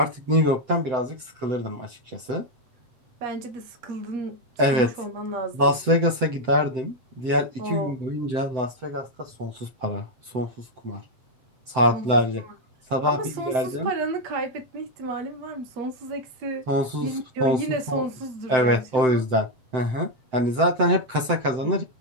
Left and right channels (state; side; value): late; left; 7.8 ms